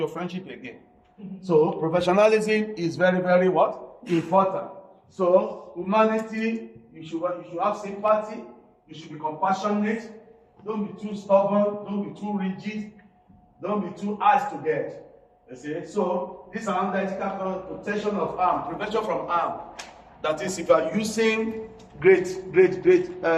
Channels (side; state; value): both; identical; correlation 1.00